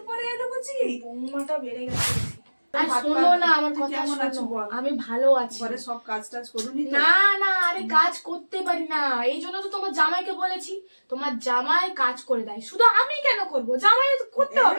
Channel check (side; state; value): both; inverted; correlation -1.00